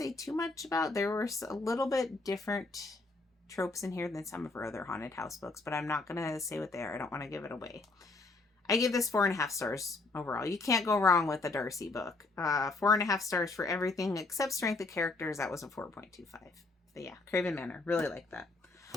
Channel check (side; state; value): right; quieter; 3.4 dB